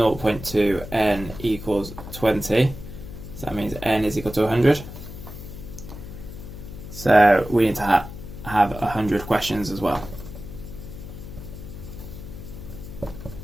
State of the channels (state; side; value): noise; left; hum, 12 dB below the sound